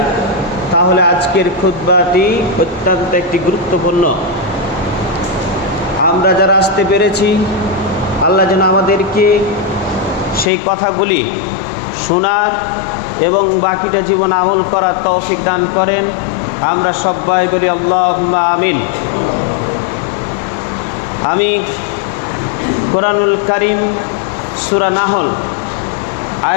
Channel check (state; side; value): drops out; right; at 10.5 s